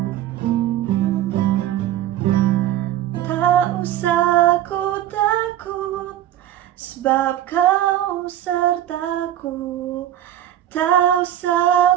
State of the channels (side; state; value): left; quieter; 12.1 dB